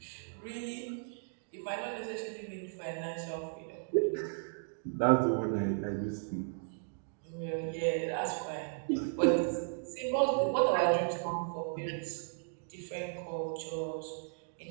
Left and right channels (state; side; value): silent; left; digital silence